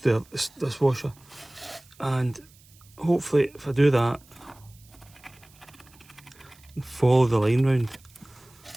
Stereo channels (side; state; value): right; noise; hiss, 27 dB below the sound